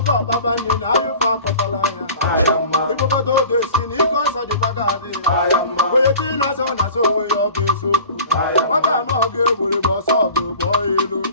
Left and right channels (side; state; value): both; inverted; correlation -0.42